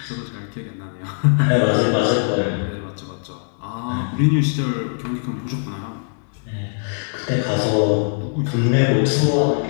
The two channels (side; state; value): right; silent; 63 dB below the other